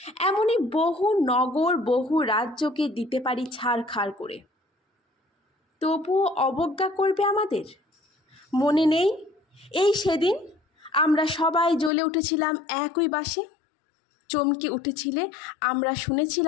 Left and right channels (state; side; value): drops out; right; at 11.9 s